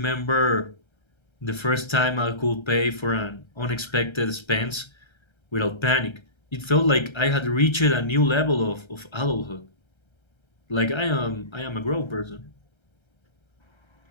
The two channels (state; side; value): late; right; 1.3 ms